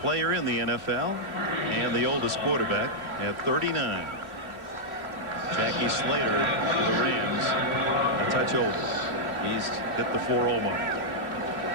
player in the NFL and the oldest quarterback at 39. Jackie Slater for the Rams, a touch over. He's hit the 4-0 mark.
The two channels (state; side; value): late; left; 2.7 ms